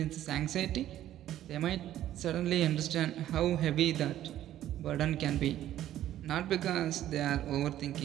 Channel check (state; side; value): quieter; left; 12.6 dB